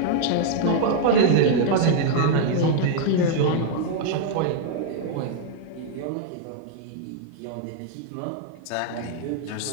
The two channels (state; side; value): different; both; correlation -0.01